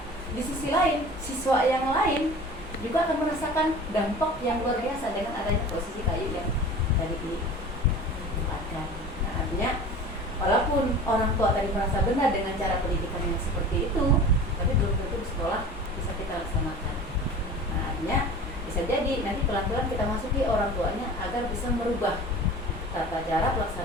di sisi lain, siswa yang lain juga akan merasakan dampak yang luar biasa dengan adanya posisi kayu yang tadi ditempatkan. Nah, artinya walaupun orang tua tadi merasa benar dengan cara pendidikan yang seperti itu, tapi belum tentu di sekolah bisa kita laksanakan. Nah, artinya bisa jadi nanti pelan-pelan kita masuki orang tuanya agar bisa merubah tata cara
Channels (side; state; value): both; normal; correlation 0.39